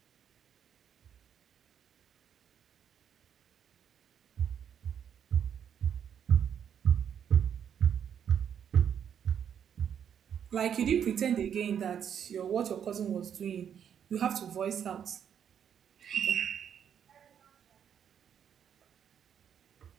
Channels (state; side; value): quieter; left; 8.5 dB